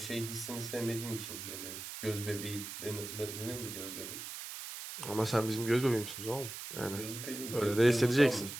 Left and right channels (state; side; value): noise; right; hiss, 8 dB below the sound